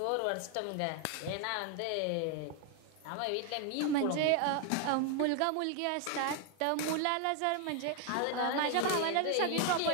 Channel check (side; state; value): both; different; correlation 0.00